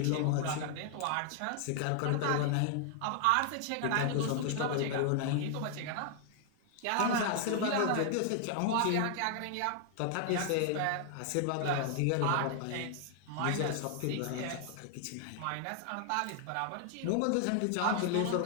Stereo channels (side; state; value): both; different; correlation 0.00